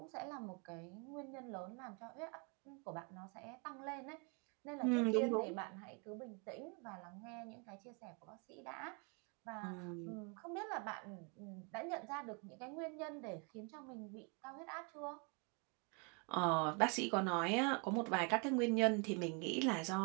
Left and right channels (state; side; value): quieter; left; 35.2 dB